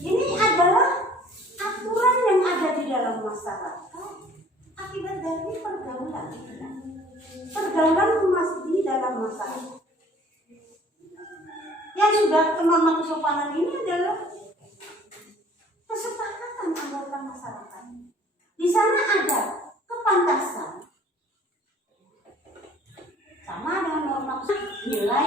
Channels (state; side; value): normal; both; correlation 0.53